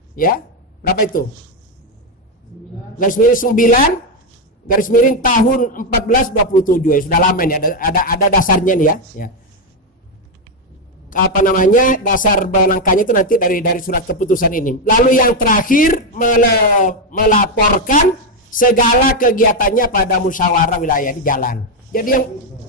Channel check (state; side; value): normal; both; correlation 0.06